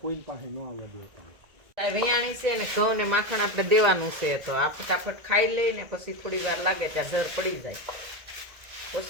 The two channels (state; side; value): late; left; 1.8 ms